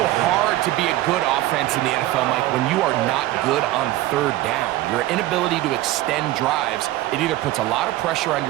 hard to be a good offense in the NFL, Mike, when you are not good on 3rd down. Your inability to extend drives, it either puts a lot of pressure on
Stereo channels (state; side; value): quieter; left; 16.0 dB